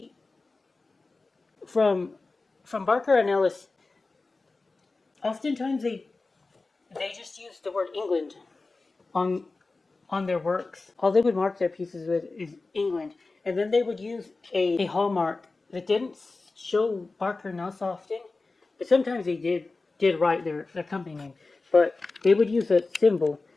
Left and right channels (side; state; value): right; quieter; 3.6 dB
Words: from Barker and Ellis, oftentimes they just use the word England on their works. All they would mark their pieces with is England, and then they would use a hallmark that didn't show Barker and Ellis often, but sometimes they did write their company name. But they would use a symbol